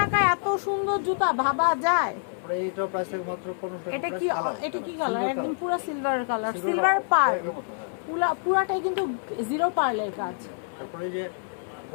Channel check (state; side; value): silent; right; 60 dB below the other